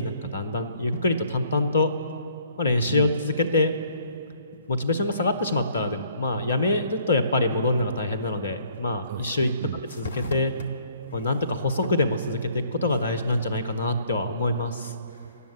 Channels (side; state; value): both; inverted; correlation -0.61